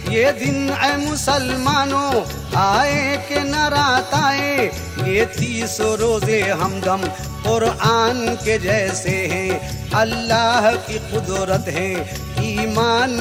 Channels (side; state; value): both; identical; correlation 1.00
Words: ये दिन ऐ मुसलमानों आए कि न रात आए। ये 30 रोजे हमदम कुरान के जैसे हैं, अल्लाह की कुदरत है ईमान